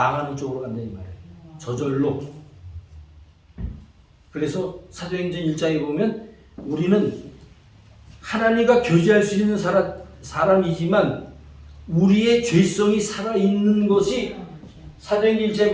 쪽으로 간다 이 말이에요. 저절로. 그래서 사도행전 1장에 보면 우리는 하나님과 교제할 수 있는 사람이지만 우리의 죄성이 살아있는 것이 사도행전 1장에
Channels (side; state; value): both; identical; correlation 1.00